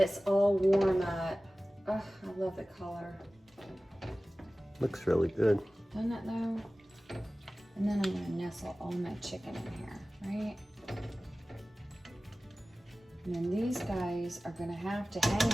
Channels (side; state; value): both; normal; correlation 0.97